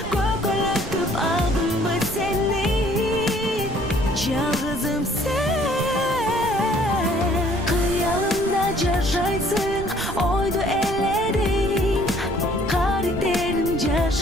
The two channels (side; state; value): right; noise; rumble, 10 dB below the sound